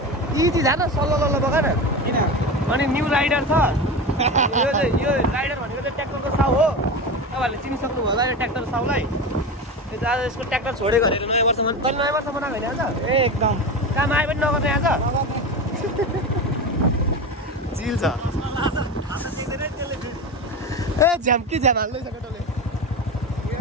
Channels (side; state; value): both; normal; correlation 0.24